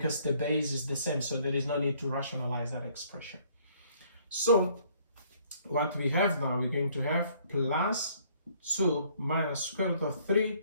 the base is the same, so there is no need to rationalize that expression. So what we have now, we're going to have plus 2 minus square root of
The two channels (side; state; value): both; inverted; correlation -0.62